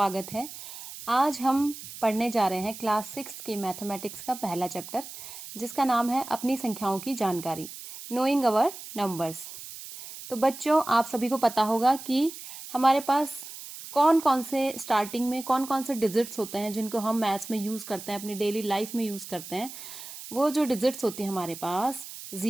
है। आज हम पढ़ने जा रहे हैं क्लास 6 की मैथमेटिक्स का पहला चैप्टर, जिसका नाम है अपनी संख्याओं की जानकारी, नोइंग अवर नंबर्स। तो बच्चों, आप सभी को पता होगा कि हमारे पास कौन कौन से स्टार्टिंग में कौन कौन से डिजिट्स होते हैं जिनको हम मैथ्स में यूज करते हैं, अपनी डेली लाइफ में यूज करते हैं। वो जो डिजिट्स होती है हमारे पास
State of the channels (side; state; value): right; noise; hiss, 12 dB below the sound